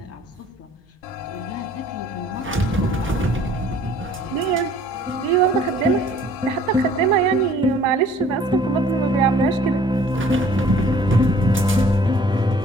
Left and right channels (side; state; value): both; normal; correlation 0.54